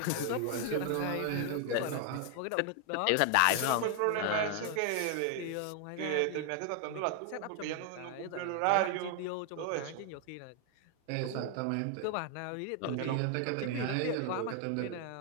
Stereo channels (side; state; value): both; different; correlation 0.00